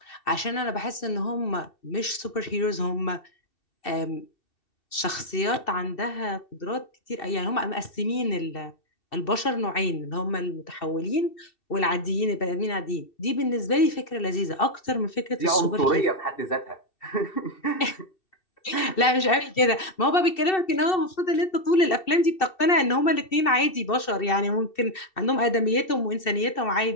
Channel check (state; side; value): late; right; 2.7 ms